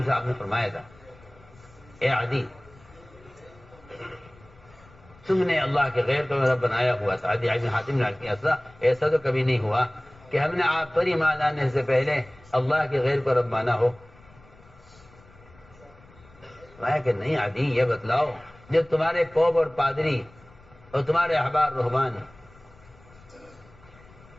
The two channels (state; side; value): noise; left; rumble, 25 dB below the sound